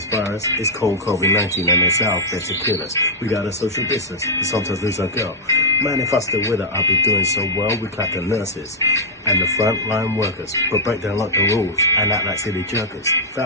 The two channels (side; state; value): both; normal; correlation -0.04